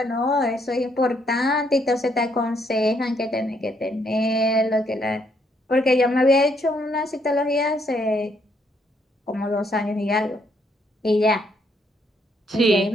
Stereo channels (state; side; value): normal; both; correlation 0.72